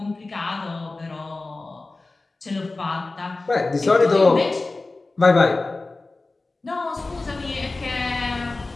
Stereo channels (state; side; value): quieter; right; 3.3 dB